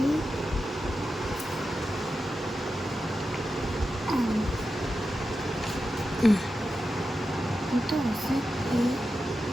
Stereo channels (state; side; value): normal; both; correlation 0.90